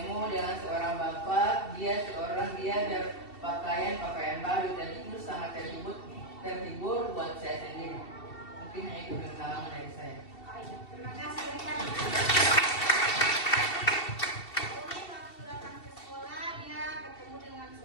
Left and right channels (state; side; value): late; right; 2.7 ms